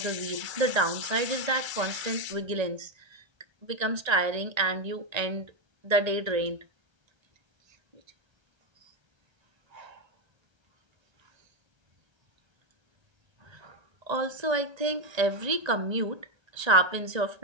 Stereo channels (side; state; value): left; late; 1.3 ms